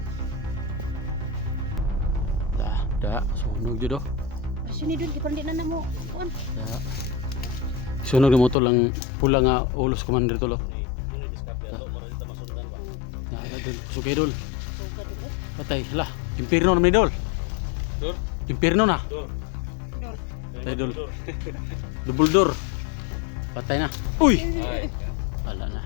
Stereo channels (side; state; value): right; drops out; at 8.6 s